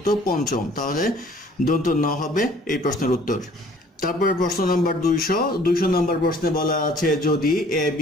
পঞ্চম, তাহলে দন্ত ন হবে এই প্রশ্নের উত্তর। তারপরে প্রশ্ন নাম্বার 200 নম্বর প্রশ্নে বলা আছে যদি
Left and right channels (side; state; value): both; normal; correlation 0.55